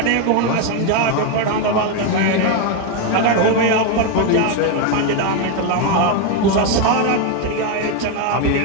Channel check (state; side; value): different; both; correlation 0.02